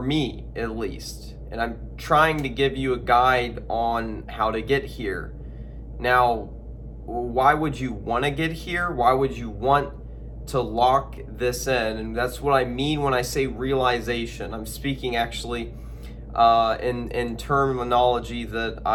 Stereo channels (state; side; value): identical; both; correlation 1.00